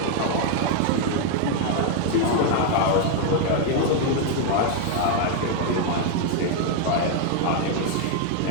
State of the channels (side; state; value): both; different; correlation 0.00